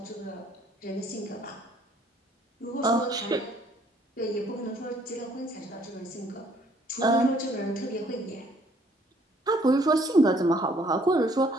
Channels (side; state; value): both; normal; correlation 0.63